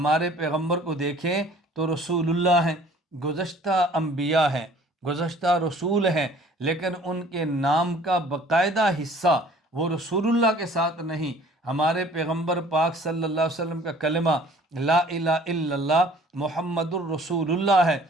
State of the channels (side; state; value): both; normal; correlation 0.52